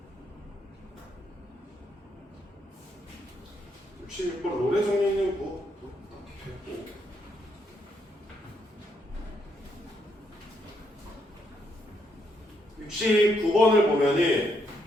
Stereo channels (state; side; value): normal; both; correlation 0.76